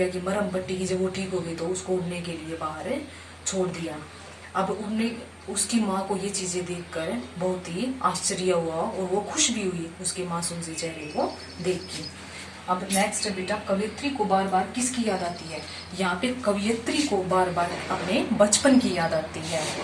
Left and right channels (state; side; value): identical; both; correlation 1.00